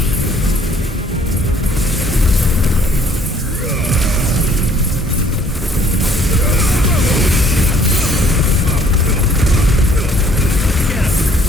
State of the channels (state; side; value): normal; both; correlation 0.60